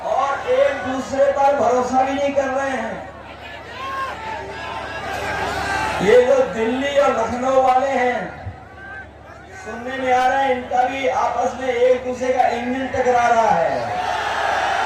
और एक दूसरे पर भरोसा भी नहीं कर रहे हैं। ये जो दिल्ली और लखनऊ वाले हैं, सुनने में आ रहा है इनका भी आपस में एक दूसरे का इंजन टकरा रहा है।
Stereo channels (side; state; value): both; identical; correlation 1.00